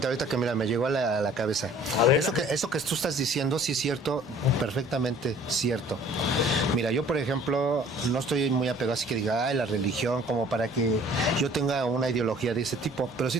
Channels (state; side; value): normal; both; correlation 0.52